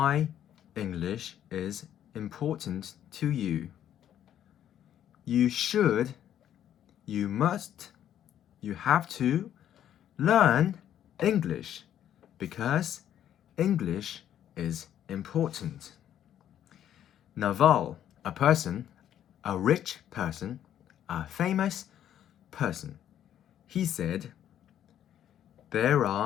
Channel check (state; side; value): quieter; right; 10.7 dB